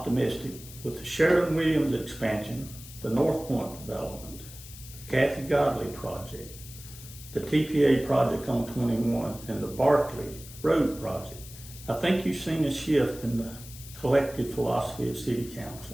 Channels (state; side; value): noise; left; hiss, 16 dB below the sound